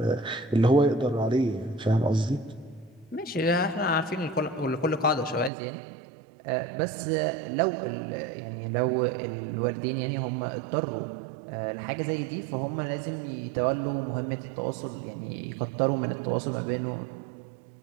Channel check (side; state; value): left; drops out; at 5.5 s